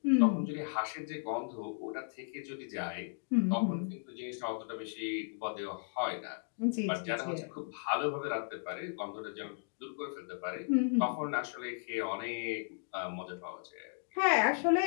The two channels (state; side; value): silent; right; digital silence